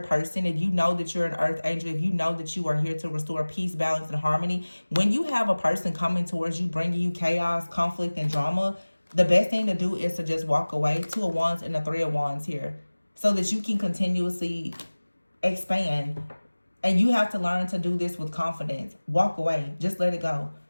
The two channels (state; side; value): inverted; both; correlation -1.00